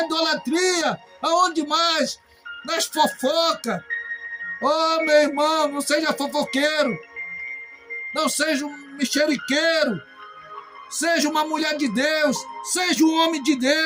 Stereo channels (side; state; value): both; identical; correlation 1.00